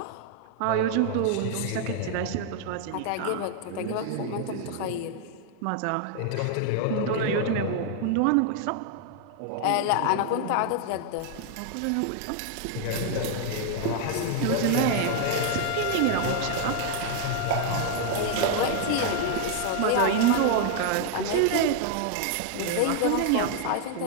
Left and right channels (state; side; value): different; both; correlation 0.00